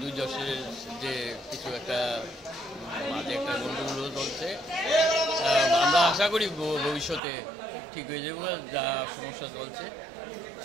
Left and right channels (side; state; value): left; drops out; at 7.2 s